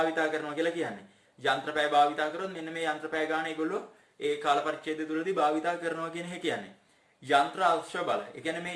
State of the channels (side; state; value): both; identical; correlation 1.00